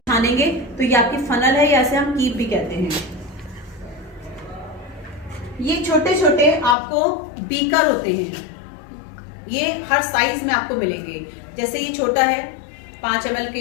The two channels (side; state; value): right; drops out; at 6.8 s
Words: छानेंगे, तो ये आपकी फनल है, या ऐसे हम कीप भी कहते हैं। ये छोटे छोटे आपको बीकर होते हैं, ये हर साइज में आपको मिलेंगे। जैसे ये छोटा है, 5 ml